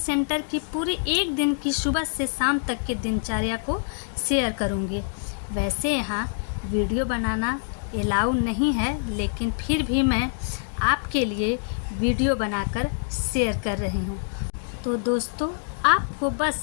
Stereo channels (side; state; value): right; silent; digital silence